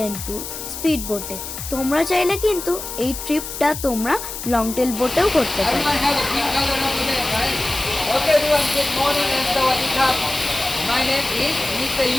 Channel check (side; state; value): left; noise; hiss, 8 dB below the sound